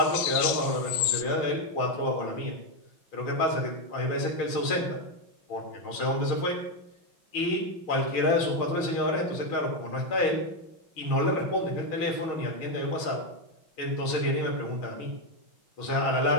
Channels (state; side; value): late; right; 6.3 ms